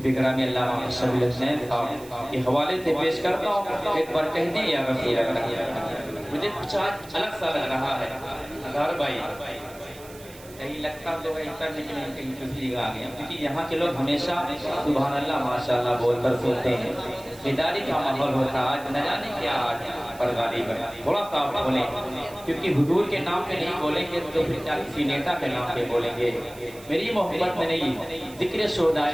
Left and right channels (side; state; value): right; noise; hiss, 20 dB below the sound